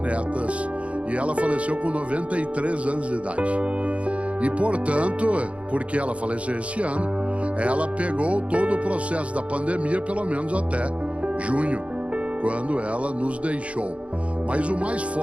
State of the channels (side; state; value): left; late; 0.063 ms